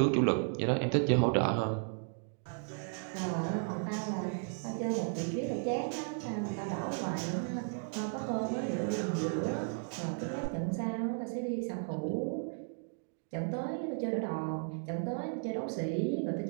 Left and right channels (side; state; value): left; silent; 55 dB below the other